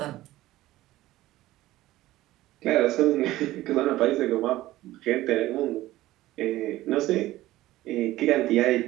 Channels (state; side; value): quieter; left; 16.3 dB